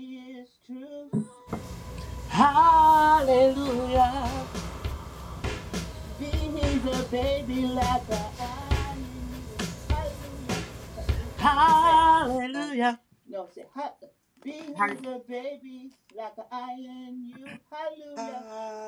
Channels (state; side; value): identical; both; correlation 1.00